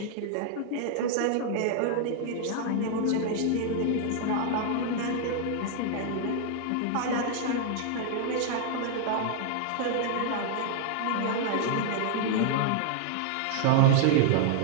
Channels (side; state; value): both; different; correlation -0.01